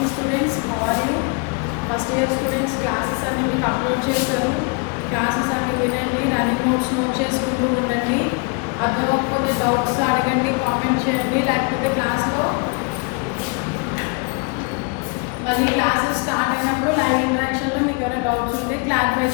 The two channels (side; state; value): right; quieter; 32.1 dB